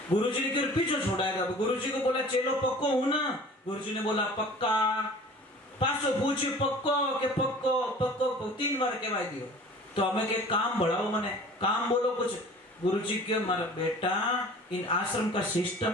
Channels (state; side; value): normal; both; correlation 0.45